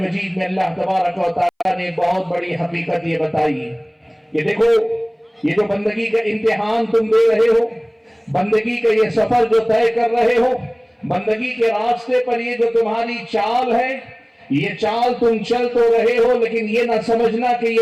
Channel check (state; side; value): identical; both; correlation 1.00